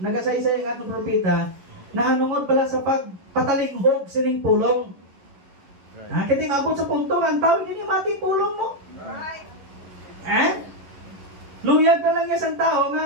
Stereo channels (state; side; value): late; left; 11 ms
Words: ang atong propeta na hanungod pala sa pagpatalinghog sining pulong. Right. Kaya maabot sa punto ang tao hindi mati pulong mo. Right. Luyag na lang niya sa tao